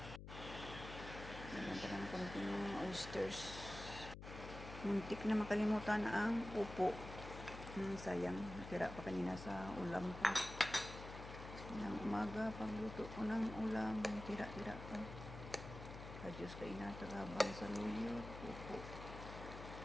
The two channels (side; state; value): left; noise; hum, 10 dB below the sound